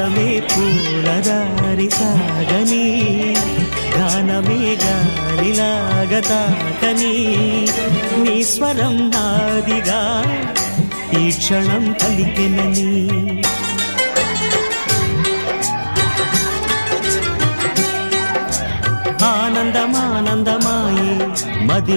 పూలదారి సాగని గానమే గాలిలాగా తాకని నీ స్వరం నాదిగా ఈ క్షణం పలికెనని ఆనందమానందమాయే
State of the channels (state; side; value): inverted; both; correlation -1.00